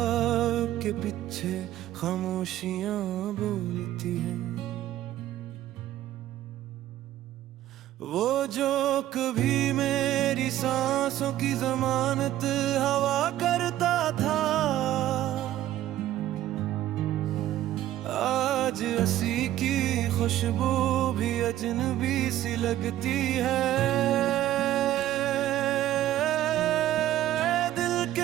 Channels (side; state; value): left; quieter; 13.4 dB